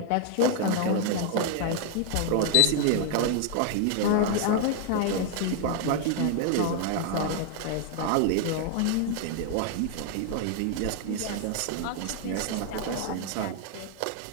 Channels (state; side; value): different; both; correlation 0.00